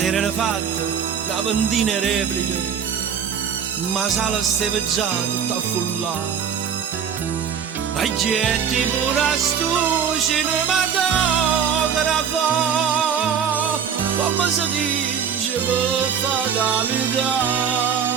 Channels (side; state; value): left; quieter; 7.4 dB